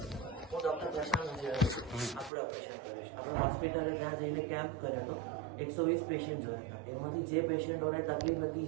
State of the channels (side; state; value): left; drops out; at 2.3 s